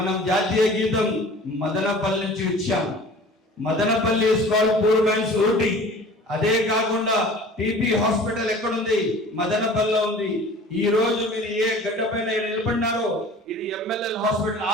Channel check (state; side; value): normal; both; correlation 0.44